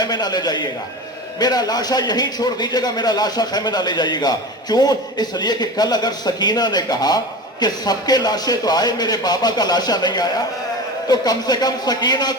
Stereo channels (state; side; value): normal; both; correlation 0.30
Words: نہ لے جائیے گا, میرا لاشا یہیں چھوڑ دیجیے گا, میرا لاشا خیمے نہ لے جائیے گا. کیوں؟ اس لیے کہ کل اگر سکینہ نے کہا کہ سب کے لاشیں تو آئے میرے بابا کا لاشا نہیں آیا, تو کم سے کم سکینہ